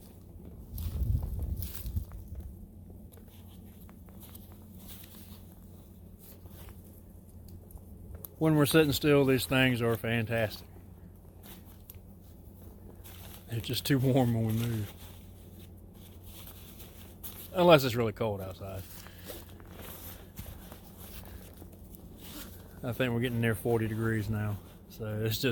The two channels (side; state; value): both; identical; correlation 1.00